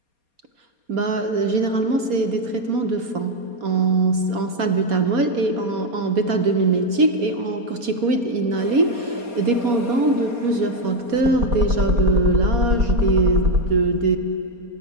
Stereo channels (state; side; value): late; left; 4.3 ms